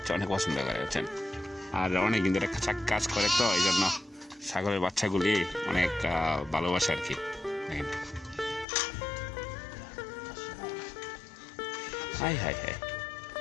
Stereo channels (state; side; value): drops out; right; at 8.7 s